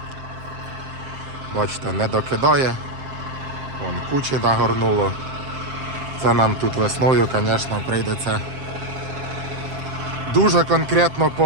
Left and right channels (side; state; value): left; late; 7.6 ms